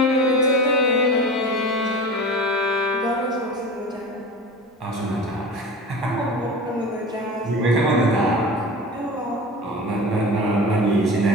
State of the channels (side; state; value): both; normal; correlation 0.34